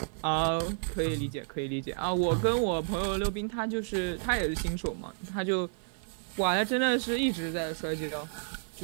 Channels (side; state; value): left; silent; 57 dB below the other